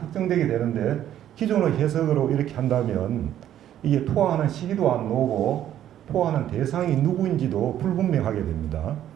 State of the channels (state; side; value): quieter; left; 11.3 dB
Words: 되는데 기존의 해석으로 이렇게 한다면 이게 투항하는 시기도 안 나오고 투항하는 대상이 누구인지도 불분명하게 됩니다.